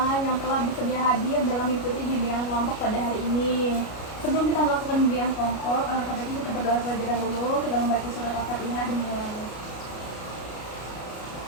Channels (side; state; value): right; late; 33 ms